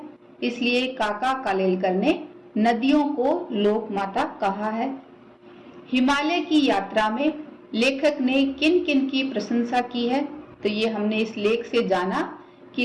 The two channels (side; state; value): both; identical; correlation 1.00